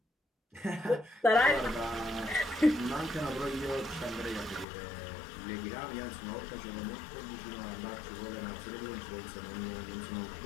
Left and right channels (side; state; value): right; drops out; at 4.7 s